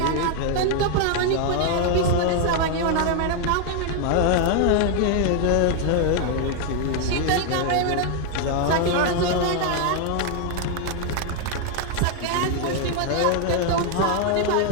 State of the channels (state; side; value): different; both; correlation 0.00